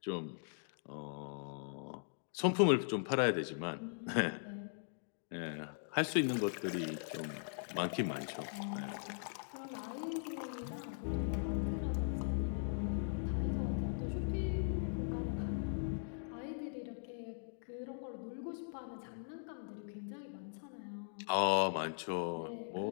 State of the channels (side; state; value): right; silent; digital silence